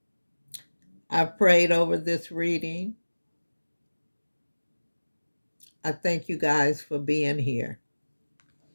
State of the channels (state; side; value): inverted; both; correlation -1.00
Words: I've prayed over this reading. I thank you guys for being here.